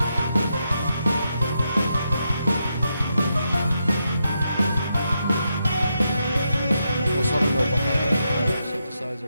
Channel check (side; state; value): both; inverted; correlation -0.83